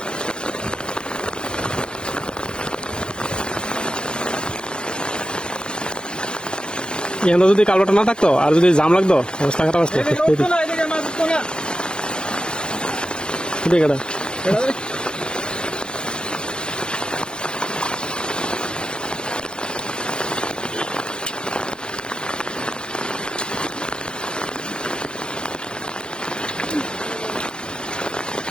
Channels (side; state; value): right; late; 0.049 ms